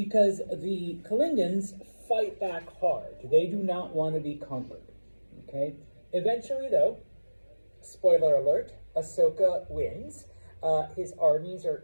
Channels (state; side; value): inverted; both; correlation -1.00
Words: the Kalingans fight back hard. They do not want to be conquered. Okay? Eventually, though, spoiler alert, Asoka wins. His armies are